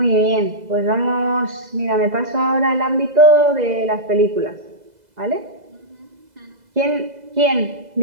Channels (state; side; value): late; left; 2.0 ms